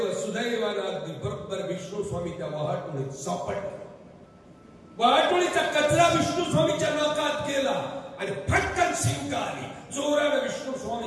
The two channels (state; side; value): identical; both; correlation 1.00